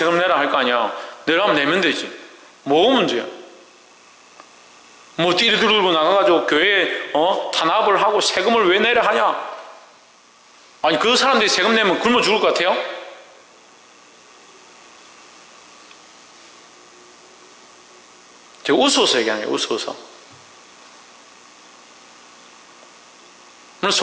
내라 할 거 아니야. 내라면 내면 되지. 뭐가 문제야? 뭐 띠리 들고 나가가지고 교회에 탄압을 하고 세금을 왜 내라 하냐? 아니 그 사람들이 세금 내면 굶어 죽을 것 같아요? 제가 웃어서 얘기하는 거예요. 웃어서. 물론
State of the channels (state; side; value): identical; both; correlation 1.00